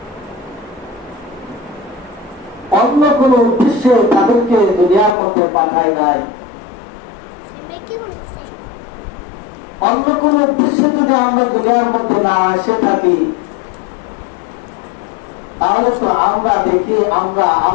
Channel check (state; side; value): drops out; right; at 5.2 s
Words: অন্য কোন উদ্দেশ্যে তাদেরকে দুনিয়ার মধ্যে পাঠায় নাই। অন্য কোন উদ্দেশ্যে যদি আমরা দুনিয়ার মধ্যে না এসে থাকি, তাহলে তো আমরা দেখি আমরা